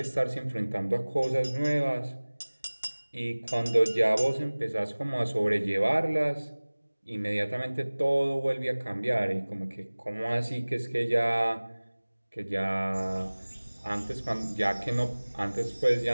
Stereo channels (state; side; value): inverted; both; correlation -1.00